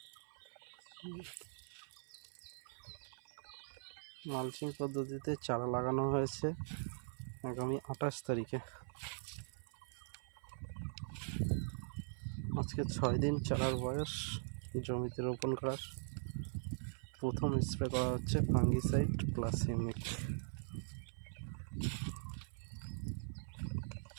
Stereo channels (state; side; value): silent; left; 50 dB below the other